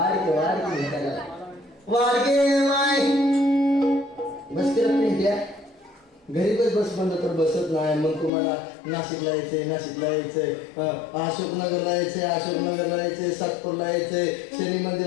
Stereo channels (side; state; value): right; drops out; at 8.3 s